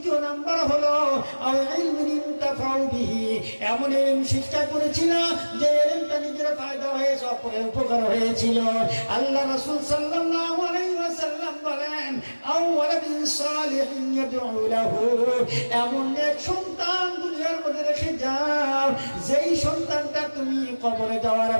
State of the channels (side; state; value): both; inverted; correlation -1.00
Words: নাম্বার হলো আও ইলমিন ইনতাফাউ বিহি, এমন ইলম শিক্ষা করেছিল যে ইলমটা নিজের ফায়দা হয়েছে, অপরের উপকার হয়েছিল। আল্লাহ রাসূল সাল্লাল্লাহু আলাইহি ওয়াসাল্লাম বলেন আও ওয়ালাদিন সালিহিন ইয়াদউ লাহু, এমন এক সন্তান দুনিয়ার মধ্যে রেখে যাও যেই সন্তানটা তুমি কবরে যাওয়ার